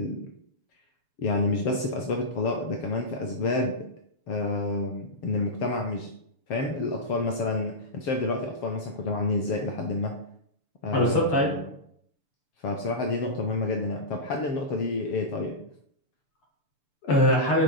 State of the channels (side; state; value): right; late; 6.9 ms